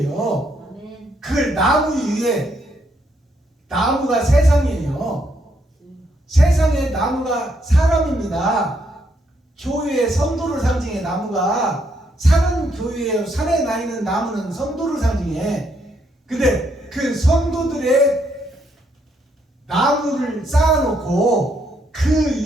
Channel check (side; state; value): both; normal; correlation 0.74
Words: 그걸 나무 위에, 나무가 세상이에요. 세상의 나무가 사람입니다. 교회의 성도를 상징해. 나무가 산은 교회예요. 산에 나 있는 나무는 성도를 상징해. 근데 그 성도들의 나무를 쌓아놓고 그